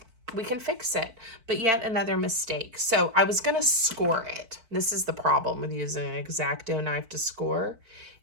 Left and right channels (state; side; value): late; left; 4.5 ms